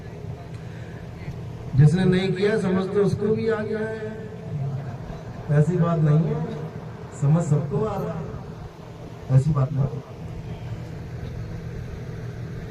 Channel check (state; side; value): identical; both; correlation 1.00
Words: जिसने नहीं किया समझते उसको भी आ गया है, ऐसी बात नहीं है, समझ सबको आ रहा है, ऐसी बात नहीं।